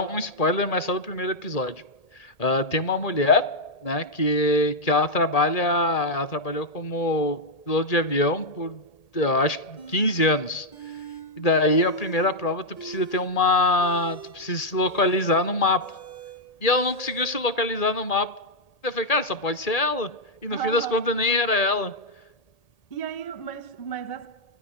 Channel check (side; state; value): right; late; 1.8 ms